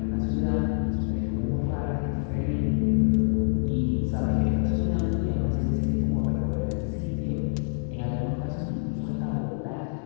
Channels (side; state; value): right; silent; digital silence